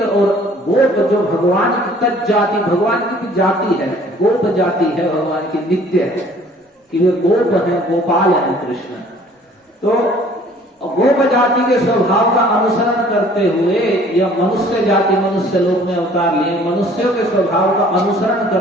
और गोप जो भगवान की तज जाति, भगवान की जाति है, गोप जाति है भगवान की, नित्य है कि वे गोप है, गोपाल है कृष्ण। तो गोप जाति के स्वभाव का अनुसरण करते हुए या मनुष्य जाति मनुष्य लोक में अवतार लिए मनुष्यों के स्वभाव का अनुसरण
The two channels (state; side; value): normal; both; correlation 0.54